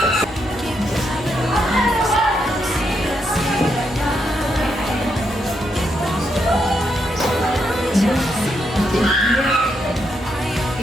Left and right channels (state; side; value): normal; both; correlation 0.80